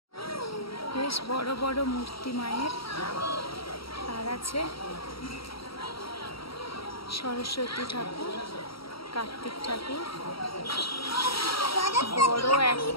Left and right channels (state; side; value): late; right; 0.75 ms